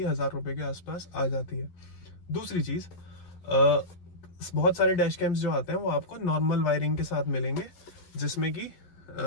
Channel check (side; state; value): right; late; 11 ms